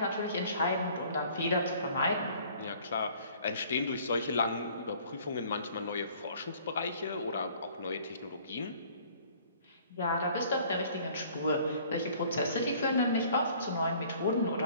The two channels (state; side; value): inverted; both; correlation -0.55